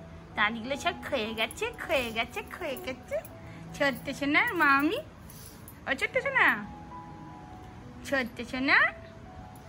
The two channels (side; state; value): both; identical; correlation 1.00